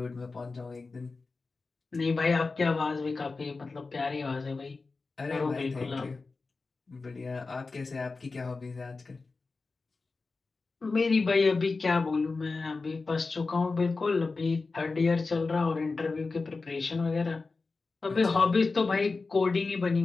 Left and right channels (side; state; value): right; quieter; 4.0 dB